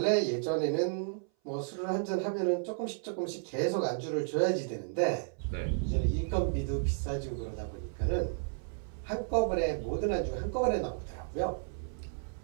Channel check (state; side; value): silent; left; 56 dB below the other